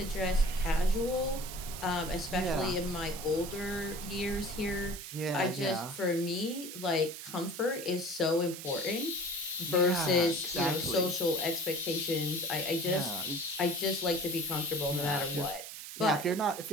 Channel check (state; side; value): noise; right; hiss, 10 dB below the sound